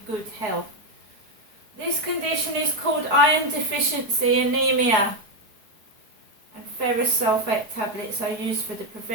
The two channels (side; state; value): left; late; 4.7 ms